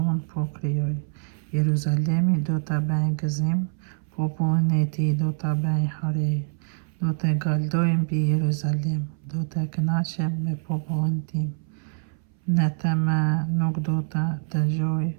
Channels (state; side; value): silent; left; 62 dB below the other